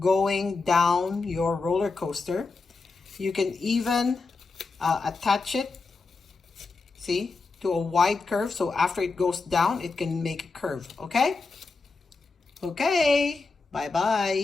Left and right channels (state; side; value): quieter; right; 4.1 dB